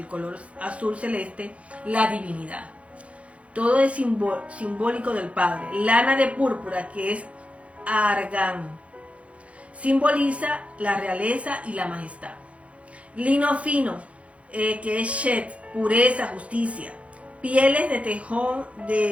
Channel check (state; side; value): late; left; 0.063 ms